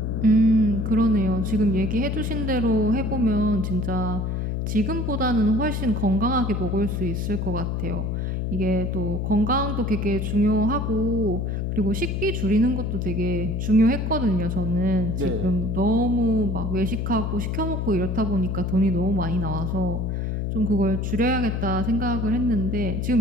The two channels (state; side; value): noise; left; hum, 1 dB below the sound